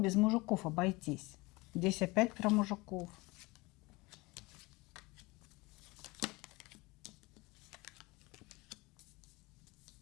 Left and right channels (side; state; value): right; quieter; 23.5 dB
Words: мужиков обойтись. Здесь опять про мужиков.